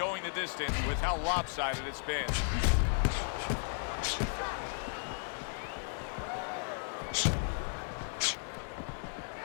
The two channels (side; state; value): right; silent; 55 dB below the other